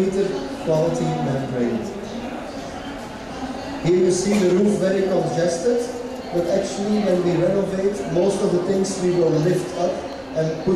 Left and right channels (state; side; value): identical; both; correlation 1.00